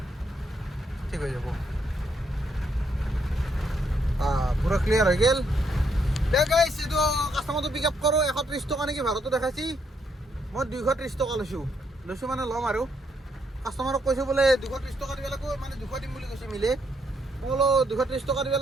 ঠিক হৈ যাব পুৰা ক্লিয়াৰ হৈ গ'ল দে গাইছ এইটো কাষ্টমাৰটো পিক আপ কৰোঁ 130 টকা নেকি ভাড়াটো দেখাইছি মই 230 টকা লৈছোঁ মানে ল'ম আৰু কাষ্টমাৰক কৈছোঁ বোলে 230 টকা দিব লাগিব মানে 200 দিম বুলি কৈছে মিলে মই বোলো 230 টকা দিব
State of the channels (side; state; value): both; normal; correlation 0.74